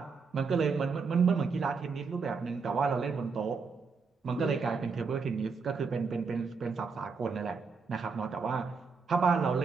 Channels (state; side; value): quieter; left; 5.0 dB